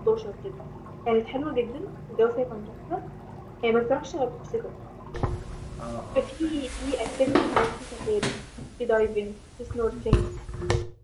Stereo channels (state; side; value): identical; both; correlation 1.00